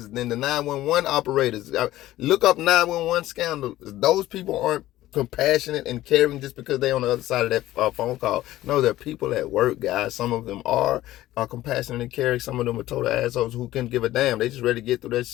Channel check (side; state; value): right; quieter; 15.3 dB